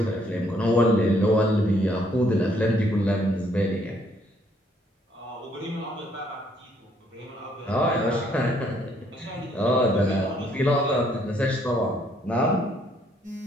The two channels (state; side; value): normal; both; correlation 0.67